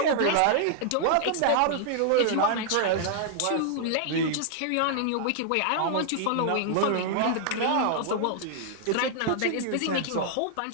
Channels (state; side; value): different; both; correlation -0.01